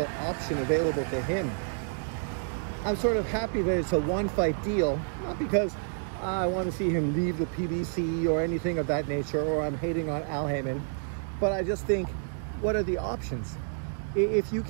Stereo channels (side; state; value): left; silent; digital silence